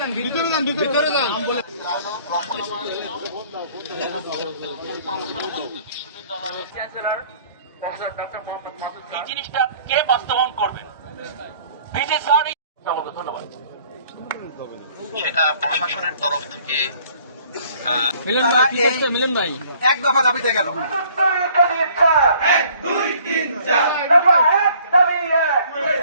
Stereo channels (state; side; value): inverted; both; correlation -0.57